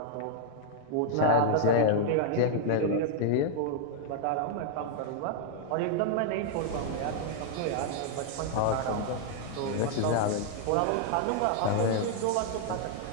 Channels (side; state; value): both; different; correlation 0.00